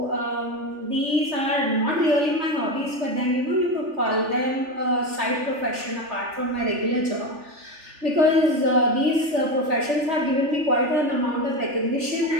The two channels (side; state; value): left; late; 3.4 ms